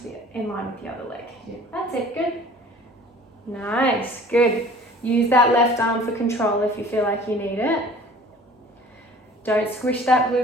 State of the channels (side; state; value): both; normal; correlation 0.48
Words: in line with the other leg. Yeah. That's it. Good. Nice. Good. Use that left arm for control if you feel like you need it. Don't squish that